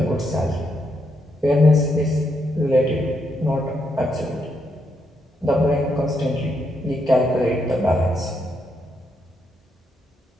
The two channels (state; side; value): normal; both; correlation 0.79